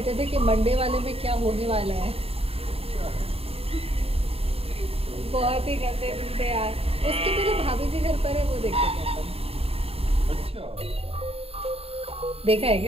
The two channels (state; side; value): late; left; 0.28 ms